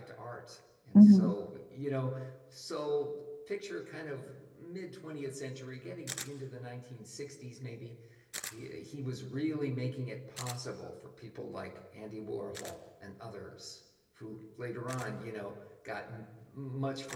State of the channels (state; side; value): identical; both; correlation 1.00